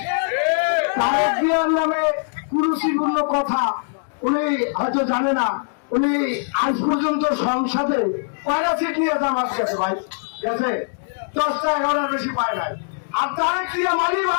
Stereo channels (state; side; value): silent; right; digital silence